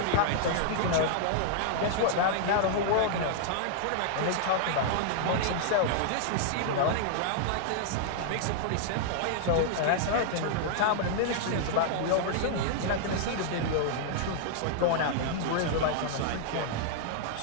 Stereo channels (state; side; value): different; both; correlation -0.01